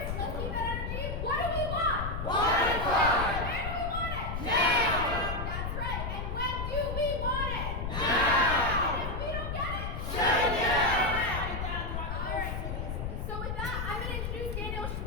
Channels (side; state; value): left; noise; rumble, 3 dB below the sound